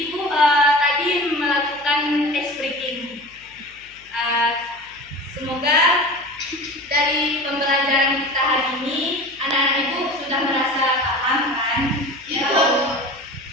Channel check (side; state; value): left; noise; hum, 29 dB below the sound